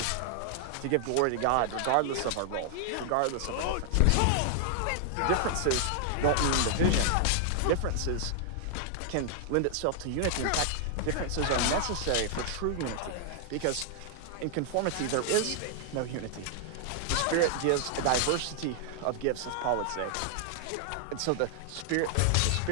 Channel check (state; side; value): different; both; correlation 0.00